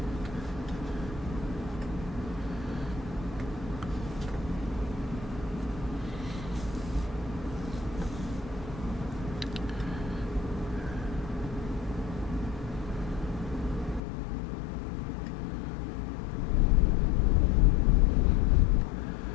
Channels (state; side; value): drops out; right; at 14.0 s